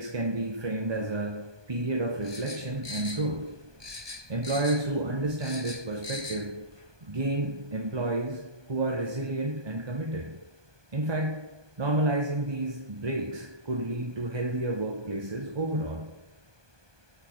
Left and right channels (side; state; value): left; late; 1.2 ms